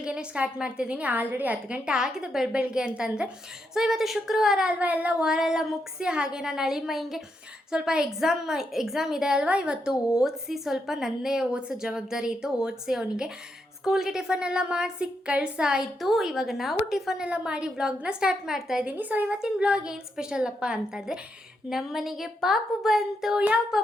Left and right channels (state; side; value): normal; both; correlation 0.81